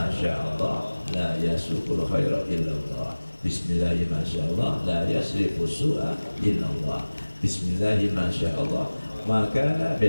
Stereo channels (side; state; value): both; inverted; correlation -1.00